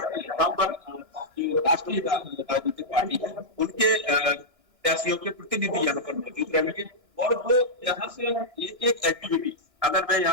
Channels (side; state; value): right; late; 2.9 ms